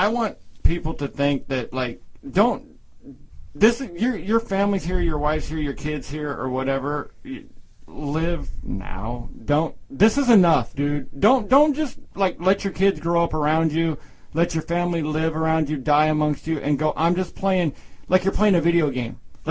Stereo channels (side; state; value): both; identical; correlation 1.00